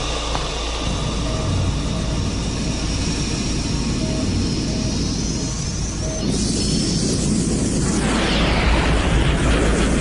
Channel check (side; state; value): both; identical; correlation 1.00